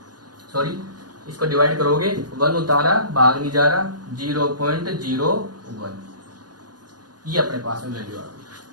सॉरी इसको डिवाइड करोगे 1 उतारा भाग नहीं जा रहा 0.01, ये अपने पास में वैल्यू आ गई।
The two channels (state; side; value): late; left; 0.69 ms